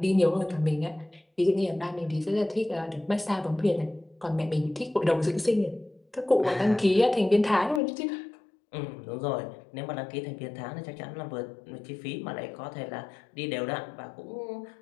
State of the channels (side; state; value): right; drops out; at 7.8 s